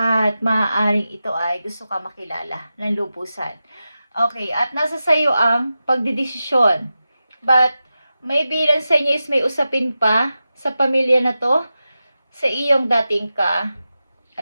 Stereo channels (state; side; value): inverted; both; correlation -0.92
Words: maaaring ito ay gusto ka makilala ng lubusan. Okay, at nasa sayo ang pagdidesisyon. But, maybe lang sa inyo is may usapin pa sa pamilya na to, sa iyong dating